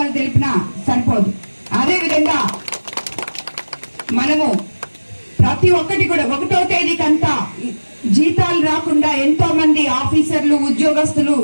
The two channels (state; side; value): inverted; both; correlation -1.00